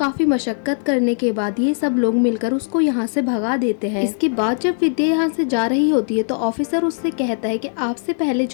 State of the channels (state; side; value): silent; right; digital silence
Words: मशक्कत करने के बाद ये सब लोग मिलकर उसको यहाँ से भगा देते हैं। इसके बाद जब विद्या यहाँ से जा रही होती है तो ऑफिसर उससे कहता है कि आपसे पहले